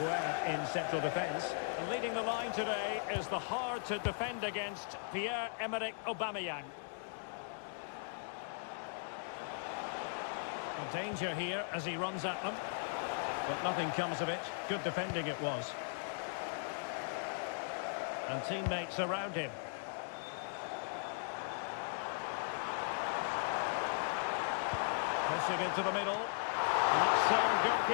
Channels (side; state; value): right; silent; digital silence